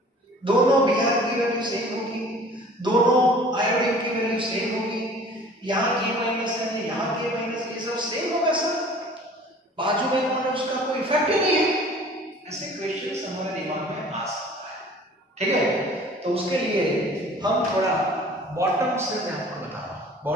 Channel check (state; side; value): normal; both; correlation 0.48